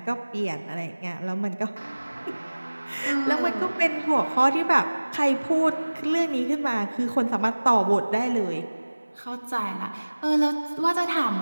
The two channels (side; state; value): both; inverted; correlation -1.00